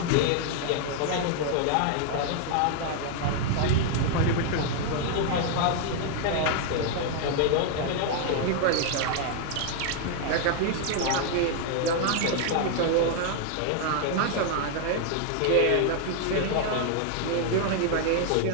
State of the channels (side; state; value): both; different; correlation 0.00